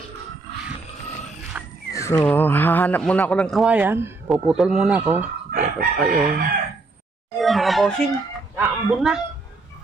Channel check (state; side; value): quieter; left; 3.5 dB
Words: So, hahanap muna ako ng kawayan. Puputol muna ako. Ito kayo. Ayun, mga bossing. Naambon na.